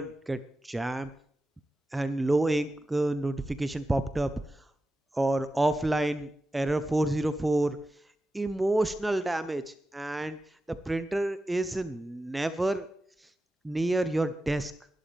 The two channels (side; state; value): both; normal; correlation 0.92